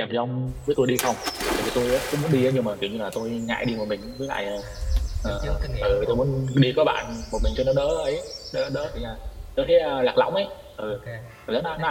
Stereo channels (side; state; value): both; identical; correlation 1.00